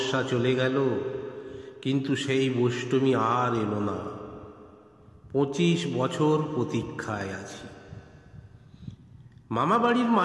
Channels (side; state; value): both; identical; correlation 1.00